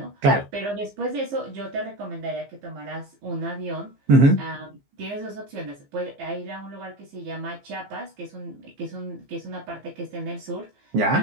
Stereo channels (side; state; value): left; late; 15 ms